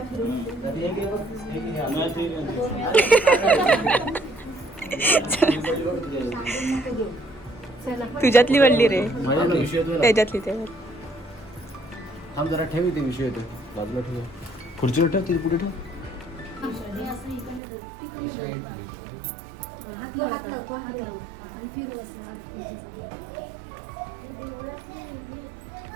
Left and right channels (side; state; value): left; drops out; at 17.6 s